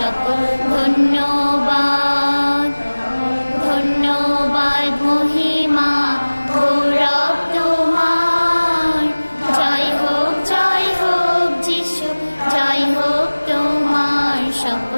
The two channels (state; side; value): inverted; both; correlation -1.00